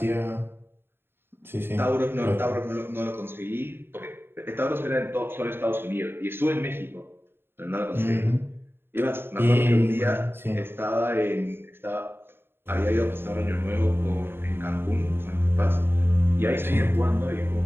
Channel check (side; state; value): left; late; 0.11 ms